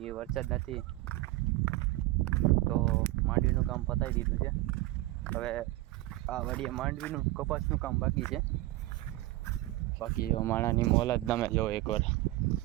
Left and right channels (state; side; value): quieter; left; 18.0 dB